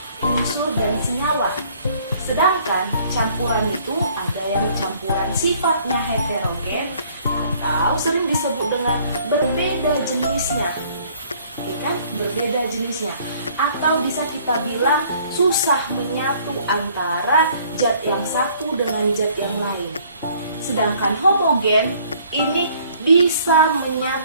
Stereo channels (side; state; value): both; inverted; correlation -0.59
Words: unsur dan senyawa. Sedangkan campuran itu ada yang campuran sifatnya heterogen atau sering disebut dengan berbeda jenisnya. Ya kan? Berbeda jenisnya. Atau bisa kita bilang susah menyatu antara zat yang satu dengan zat yang lain. Sedangkan homogen ini bisa